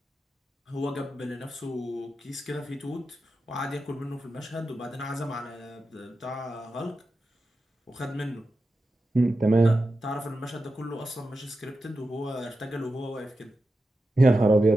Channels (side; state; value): both; normal; correlation 0.91